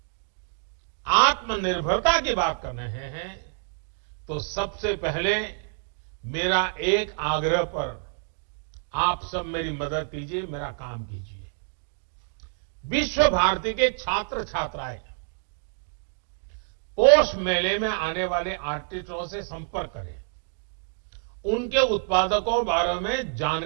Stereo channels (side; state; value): left; silent; digital silence